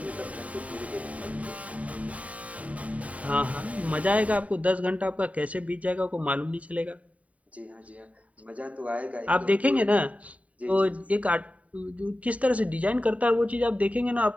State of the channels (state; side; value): late; left; 0.068 ms